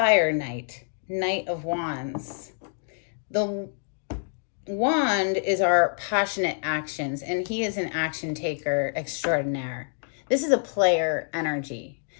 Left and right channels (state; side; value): silent; right; digital silence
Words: Knight, Knight of Wands. The wand is our passionate actions, and he is an action taker extraordinaire. This is a player energy.